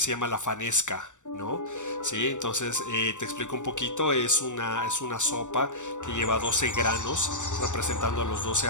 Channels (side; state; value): right; late; 0.85 ms